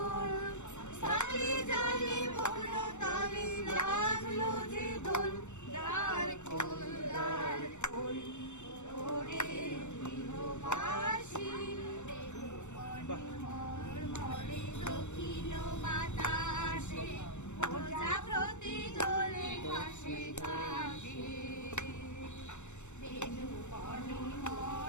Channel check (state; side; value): late; right; 0.83 ms